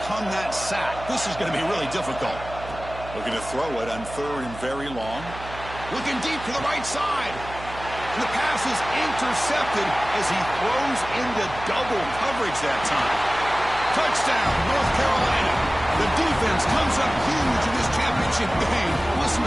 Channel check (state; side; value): noise; right; hum, 13 dB below the sound